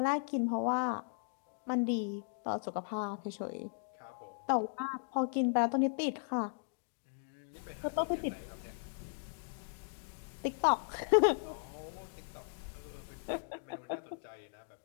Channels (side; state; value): right; silent; digital silence